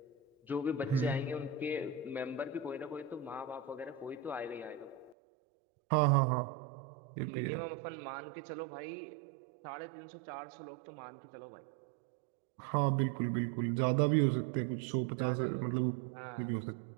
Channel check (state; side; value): drops out; left; at 5.2 s